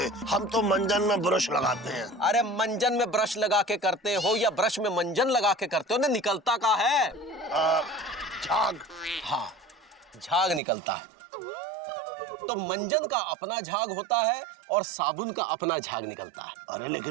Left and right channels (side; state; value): left; drops out; at 10.6 s